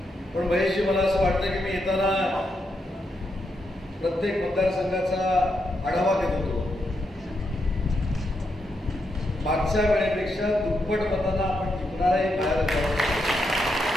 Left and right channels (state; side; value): normal; both; correlation 0.82